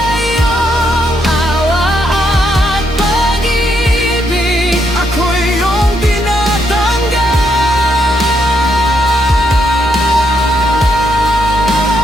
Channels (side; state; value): both; normal; correlation 0.77